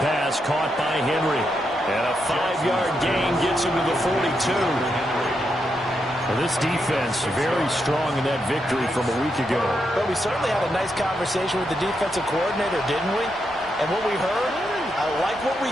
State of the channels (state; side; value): normal; both; correlation 0.82